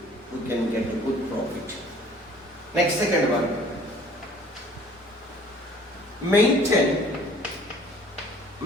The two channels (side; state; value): both; normal; correlation 0.53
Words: we can get a good profit. Next, second one. Maintain